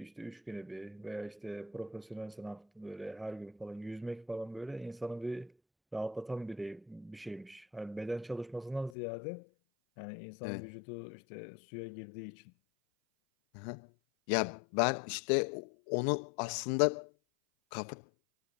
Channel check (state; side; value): drops out; right; at 9.0 s